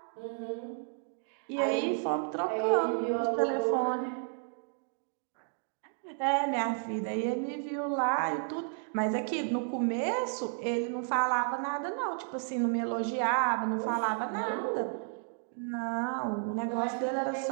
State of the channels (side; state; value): left; silent; 56 dB below the other